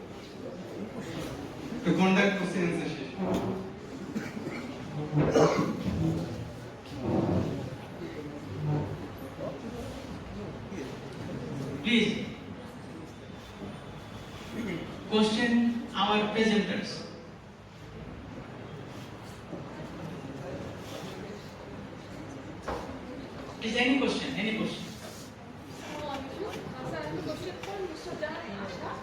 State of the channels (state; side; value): identical; both; correlation 1.00